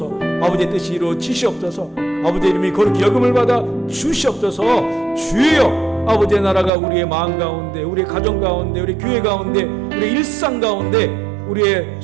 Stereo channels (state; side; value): drops out; left; at 6.7 s